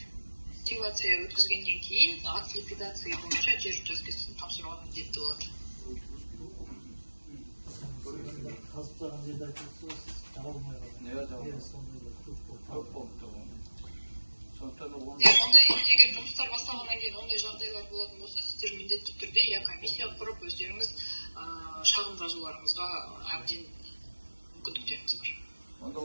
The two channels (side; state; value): both; inverted; correlation -1.00